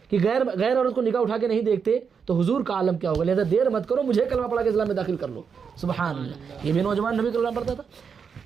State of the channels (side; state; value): left; quieter; 6.3 dB